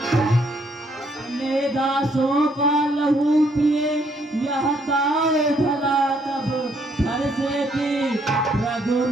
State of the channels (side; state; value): both; normal; correlation 0.69